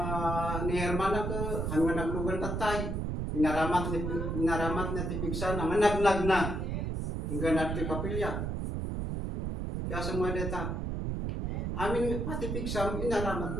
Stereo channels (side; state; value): right; noise; rumble, 2 dB below the sound